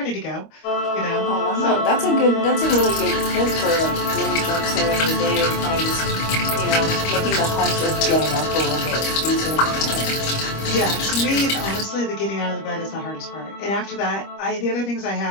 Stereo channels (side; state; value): right; late; 25 ms